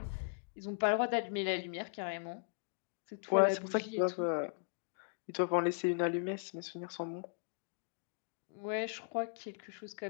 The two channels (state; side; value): silent; right; digital silence